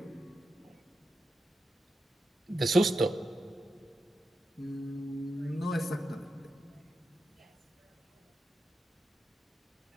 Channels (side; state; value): both; normal; correlation 0.89